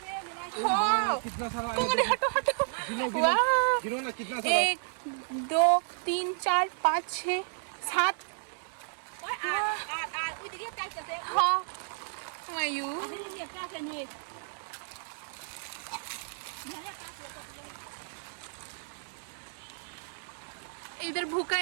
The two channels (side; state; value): left; silent; digital silence